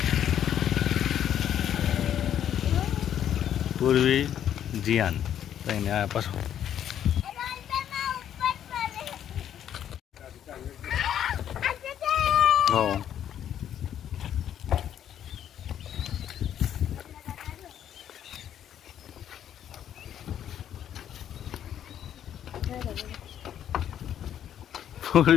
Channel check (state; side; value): quieter; right; 10.1 dB